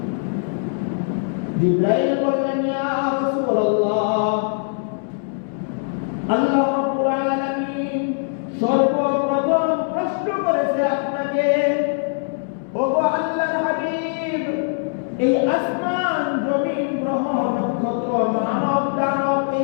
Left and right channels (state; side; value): silent; right; 64 dB below the other